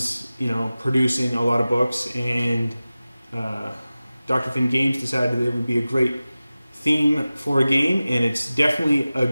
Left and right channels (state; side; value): inverted; both; correlation -0.96